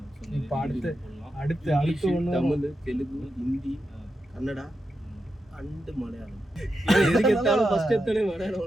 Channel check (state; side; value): normal; both; correlation 0.87